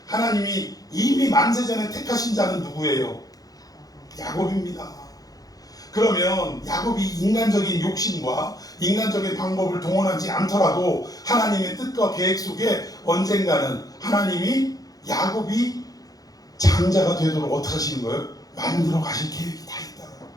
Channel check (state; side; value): late; right; 0.18 ms